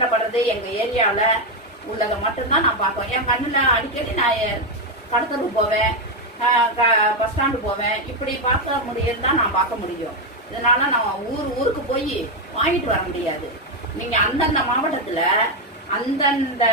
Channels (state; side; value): normal; both; correlation 0.06